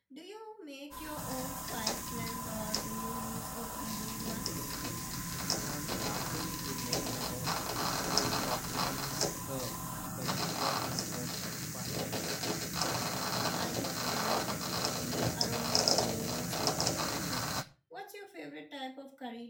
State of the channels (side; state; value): both; identical; correlation 1.00